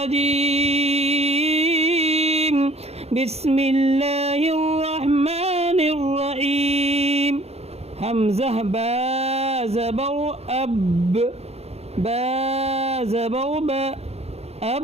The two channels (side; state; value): left; late; 0.30 ms